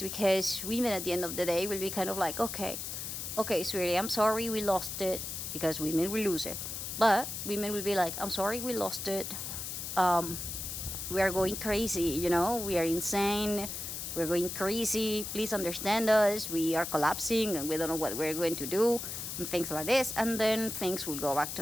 because women at the end of the day will be kind of like, okay, sweetie, I'm sorry we lost it, because women will lose it. But women will be like, "I'm sorry we lost it. We are going crazy, we are insane. We're going crazy. Please understand us. We are collapsing and we don't know what we're going to do." and things like this, and then things will go back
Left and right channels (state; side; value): noise; left; hiss, 6 dB below the sound